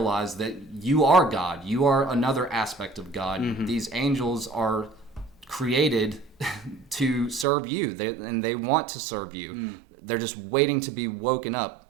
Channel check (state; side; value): drops out; left; at 7.5 s